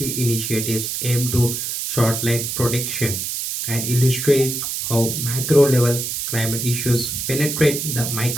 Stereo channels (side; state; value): right; noise; hiss, 3 dB below the sound